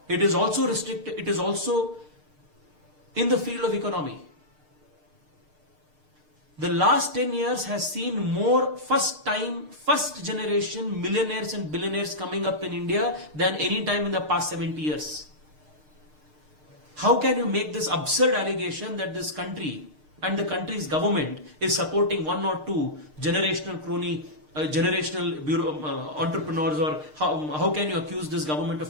It is also restricted, it is also in the field of economy. The last 10 years has seen more first generation millionaires and billionaires coming up in India than any time in the past 70 years. How can you make this absurd allegation that this country and the country's government is supporting one or two generational crony, entrepreneurs, or how can you accuse this government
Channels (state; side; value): late; left; 6.6 ms